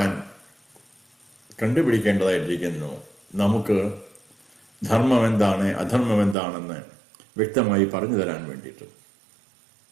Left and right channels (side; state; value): left; drops out; at 6.4 s